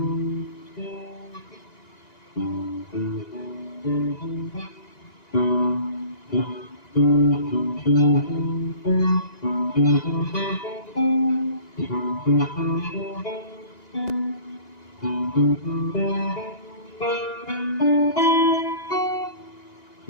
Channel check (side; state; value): right; late; 1.9 ms